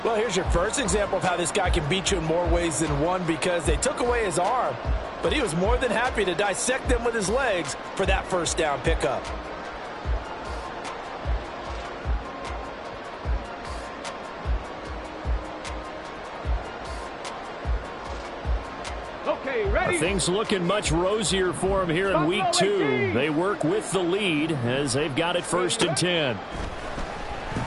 Well, here's your first example of how this guy can beat you in more ways than one, because they took away his arm, but he was more than happy to dissect them with his legs for that first down pickup. Okay, ready. Things looking much rosier for him here in week 2. They work with the lead as they've got it 1st and 10.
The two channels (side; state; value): both; identical; correlation 1.00